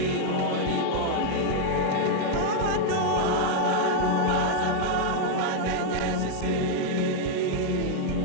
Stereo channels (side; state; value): both; different; correlation 0.00